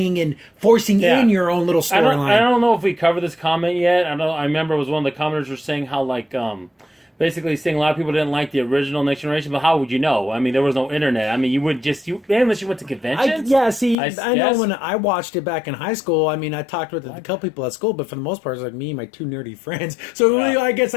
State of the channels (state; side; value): drops out; right; at 14.0 s